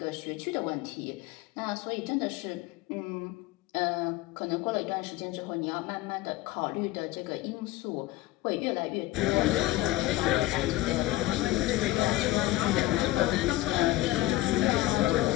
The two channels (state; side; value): quieter; right; 17.0 dB